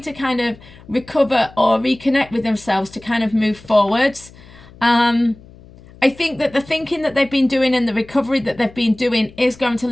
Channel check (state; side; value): noise; left; hum, 22 dB below the sound